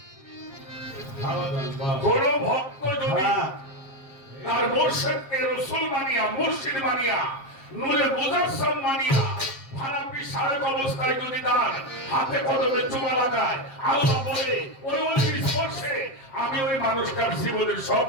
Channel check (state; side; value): late; right; 7.4 ms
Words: সুবহানাল্লাহ। কোন ভক্ত যদি তার মুর্শিদকে রাসূল মানিয়া, মুর্শিদ মানিয়া, নূরে মুজাসসাম মানিয়া, ফারাপি সারেক অবস্থায় যদি তার হাতে কদমে চুমা লাগায়, আল্লাহ বলে ওই ওলির স্পর্শে আমি ওই মানুষটার জীবনের সব